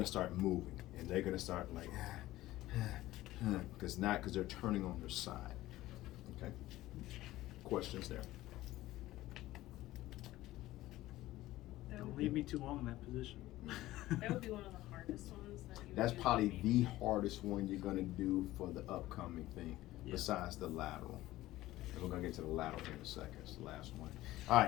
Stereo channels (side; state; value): right; quieter; 16.4 dB